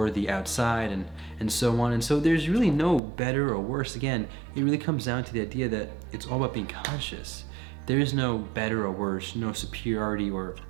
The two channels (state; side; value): drops out; left; at 3.0 s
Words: the outside and so on. And so there's really no better or worse. Again, it really comes down to the idea that it's all about being conscious. There is no better or worse, no superiority or